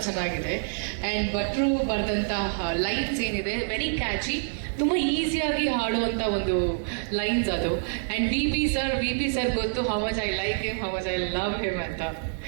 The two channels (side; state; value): left; silent; digital silence